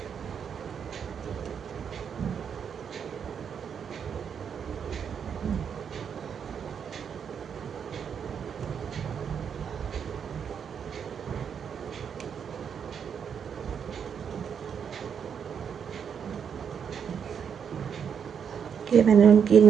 ये मैंने उनकी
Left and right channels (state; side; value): quieter; left; 7.4 dB